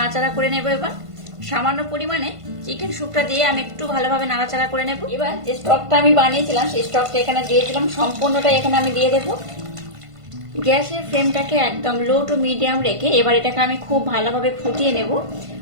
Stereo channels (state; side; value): late; left; 1.5 ms